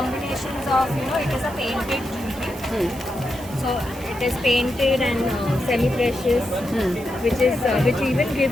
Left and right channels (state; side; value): noise; right; hiss, 17 dB below the sound